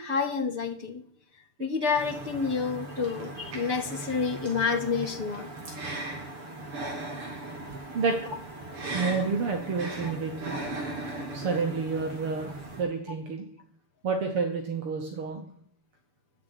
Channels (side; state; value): left; late; 6.8 ms